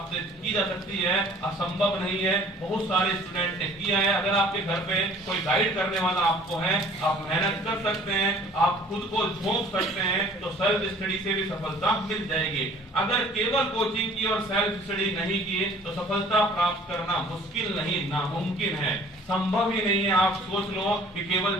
की जा सकती है, असंभव नहीं है। बहुत सारे स्टूडेंट ने किया है। अगर आपके घर पे कोई गाइड करने वाला आपको है, आप मेहनत कर सकते हैं, आप खुद को झोंक सकते हैं, तो सेल्फ स्टडी से भी सफलता मिल जाएगी। अगर केवल कोचिंग की और सेल्फ स्टडी नहीं की तो सफलता प्राप्त करना मुश्किल नहीं, नामुमकिन है, संभव ही नहीं है। आप सोच लो कि केवल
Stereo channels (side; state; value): both; normal; correlation 0.51